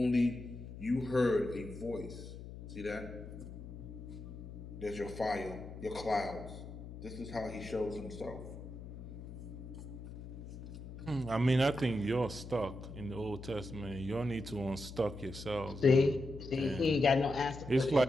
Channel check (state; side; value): noise; left; hum, 11 dB below the sound